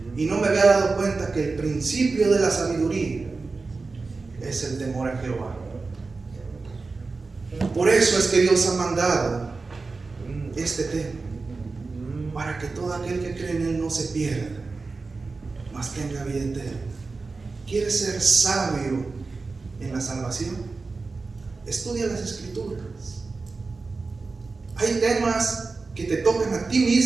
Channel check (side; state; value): left; quieter; 4.0 dB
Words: Y no me había dado cuenta que el principio de la sabiduría es el temor a Jehová. Por eso es que Dios ha mandado este tema, para que todo aquel que cree en Él no se pierda, mas tenga vida eterna. ¿Quieres ser sabio en la salvación? Estudia las escrituras. Hay temas que te tocan a ti